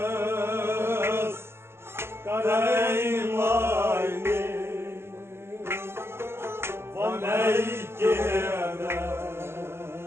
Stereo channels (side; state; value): left; late; 0.12 ms